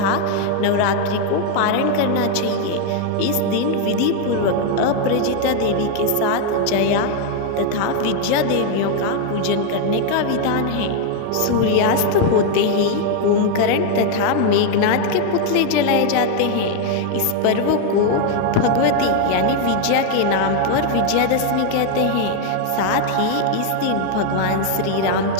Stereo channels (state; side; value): different; both; correlation 0.00